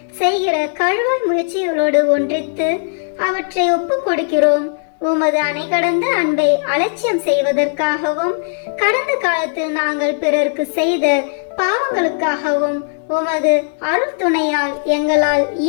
செய்கிற கழுவாய் முயற்சிகளோடு ஒன்றித்து அவற்றை ஒப்பு கொடுக்கிறோம். உமது அணை கடந்த அன்பை அலட்சியம் செய்வதற்காகவும் கடந்த காலத்தில் நாங்கள் பிறருக்கு செய்த பாவங்களுக்காகவும் உமது அருள் துணையால் எங்களால்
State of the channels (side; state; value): right; silent; digital silence